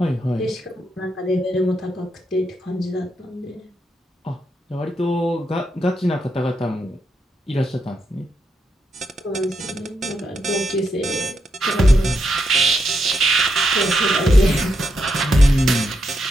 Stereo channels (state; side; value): normal; both; correlation 0.82